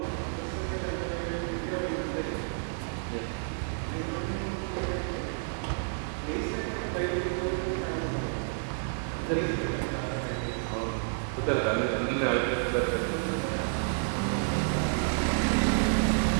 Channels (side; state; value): left; silent; digital silence